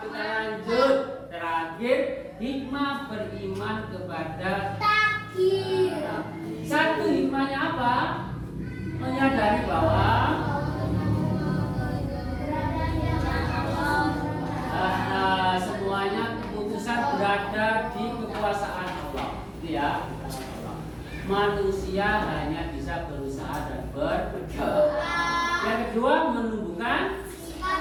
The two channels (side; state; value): both; identical; correlation 1.00